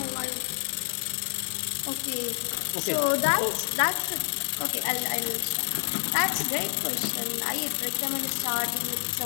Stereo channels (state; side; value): silent; right; 59 dB below the other